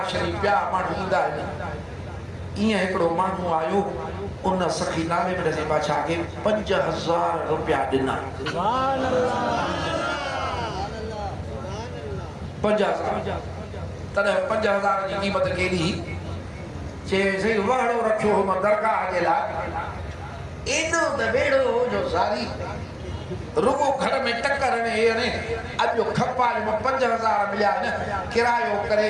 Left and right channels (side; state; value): both; identical; correlation 1.00